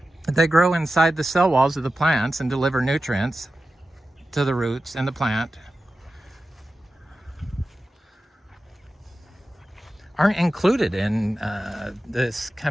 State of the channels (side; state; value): both; normal; correlation 0.93